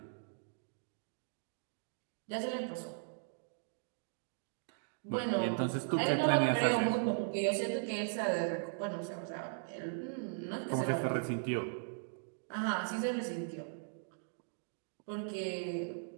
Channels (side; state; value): left; silent; digital silence